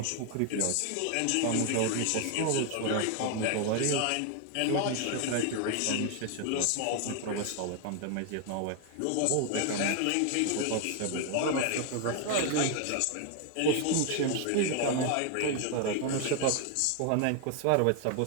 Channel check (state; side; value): different; both; correlation 0.01